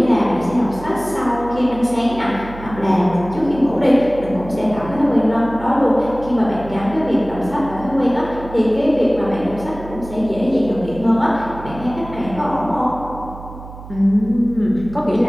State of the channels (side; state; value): right; noise; hum, 14 dB below the sound